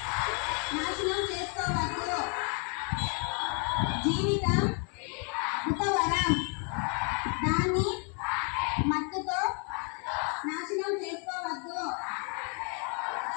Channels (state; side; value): quieter; right; 37.4 dB